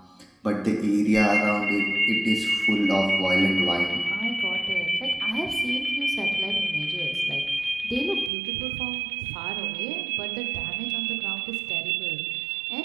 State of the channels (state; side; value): drops out; left; at 8.3 s